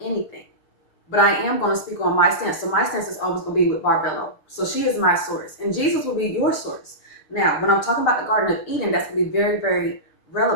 but I am going to speak on my stance. So my stance is always going to be with Barbelo. So she is my source and Jesus will be your source. Now, when I'm talking about the Garden of Eden, that's going to be very, very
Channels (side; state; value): right; late; 6.6 ms